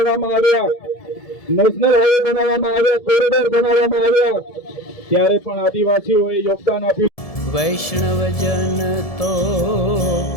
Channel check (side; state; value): right; late; 1.7 ms